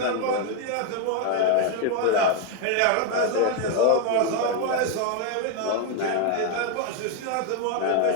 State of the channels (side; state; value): both; different; correlation 0.01